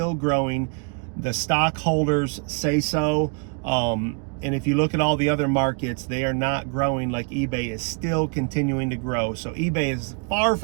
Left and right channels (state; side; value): quieter; left; 36.3 dB